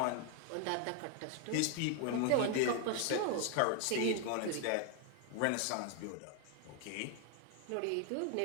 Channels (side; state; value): both; different; correlation 0.01